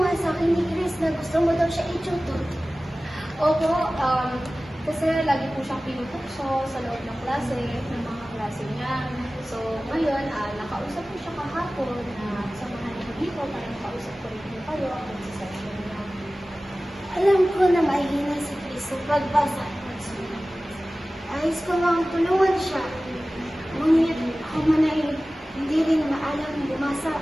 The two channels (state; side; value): normal; both; correlation 0.97